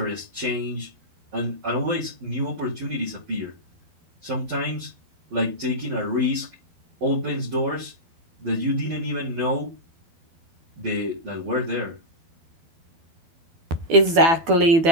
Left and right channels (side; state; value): left; late; 12 ms